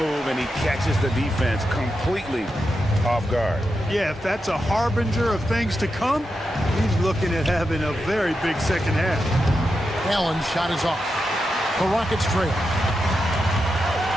and he catches the defense completely off guard. Yeah, if that's a harbinger of things to come, he's looking at having a very big second half. Allen's shot is off. The Rockets trail.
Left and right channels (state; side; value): normal; both; correlation 0.87